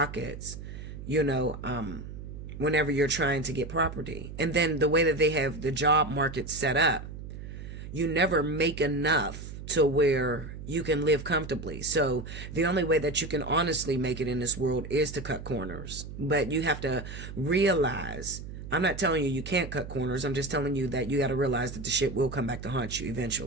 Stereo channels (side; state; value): right; noise; hum, 10 dB below the sound